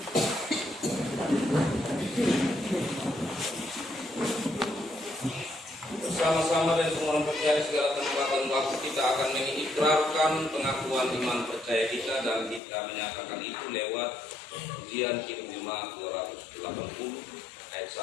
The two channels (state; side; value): drops out; right; at 12.6 s